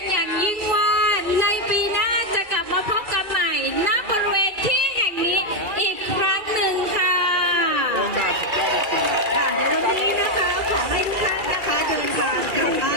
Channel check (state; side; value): late; left; 2.3 ms